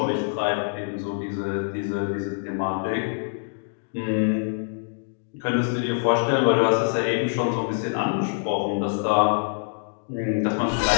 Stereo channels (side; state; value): right; silent; digital silence